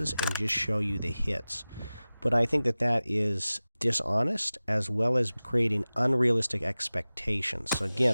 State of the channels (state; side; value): inverted; both; correlation -0.97